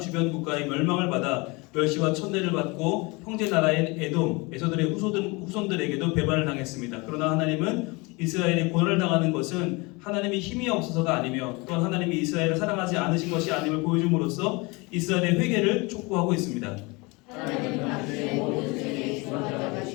국가의 멸망을 받아 멸시와 천대를 받고 형제 나라인 에돔, 에서들의 후손들에게도 배반을 당했습니다. 그러나 하나님은 이스라엘이 고난을 당하는 것은 하나님이 힘이 없어서가 아니며 또한 하나님이 이스라엘을 사랑하지 않으신 것이 아님을 보여줌으로써 이스라엘의 회개를 촉구하고 있습니다. 하나님은 당신의 모든 죄에 주관자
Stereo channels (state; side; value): quieter; right; 26.3 dB